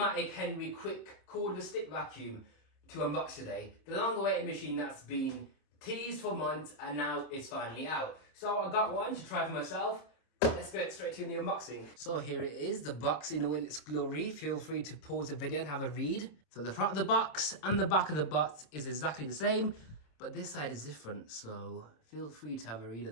Henry quick cordless stick vacuum to unbox today. The long awaited machine that's been teased for months and now it's finally out. So, I got one to try for myself. Let's get straight to the unboxing. So here it is, the box in all its glory. Feel free to pause the video and have a read. So the front of the box and the back of the box is exactly the same, but this side is different. So feel free to have a read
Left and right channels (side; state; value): right; late; 27 ms